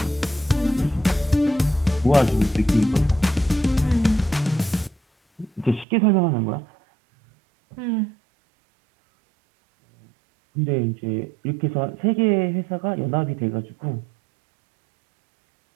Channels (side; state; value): left; drops out; at 5.9 s